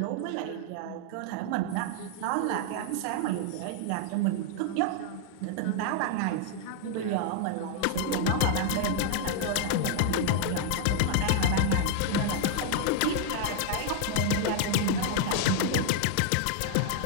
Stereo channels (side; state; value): both; different; correlation 0.00